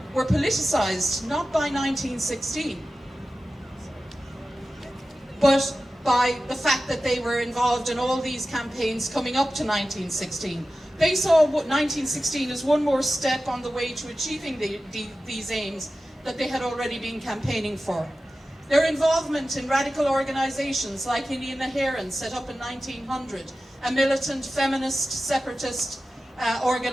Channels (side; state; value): both; normal; correlation 0.94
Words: were politicised not by 1916, but by the fact that they were involved in all these campaigns coming up to 1916. They saw 1916 as one more step on the way to achieving these aims that they had already been campaigning for. Their involvement in radical organisations like Indian Naheran, set up in 1900, a militant, feminist, separatist